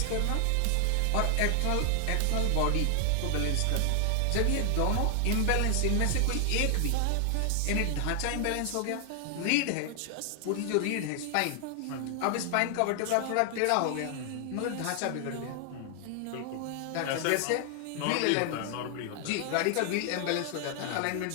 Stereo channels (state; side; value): different; both; correlation 0.00